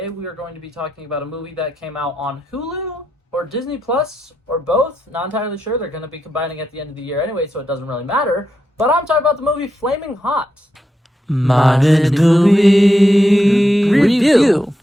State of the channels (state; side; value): normal; both; correlation 0.84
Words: we are going to be talking about a movie that came out on Hulu or Disney Plus or both. Not entirely sure. They're going to be combining at the end of the year anyway, so it doesn't really matter. But I'm talking about the movie Flaming Hot. Modern movie review.